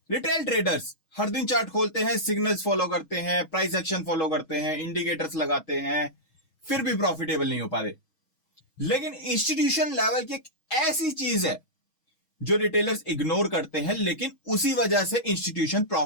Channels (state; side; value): late; right; 6.3 ms